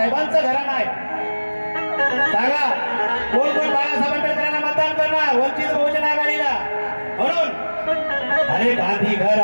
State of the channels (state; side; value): inverted; both; correlation -1.00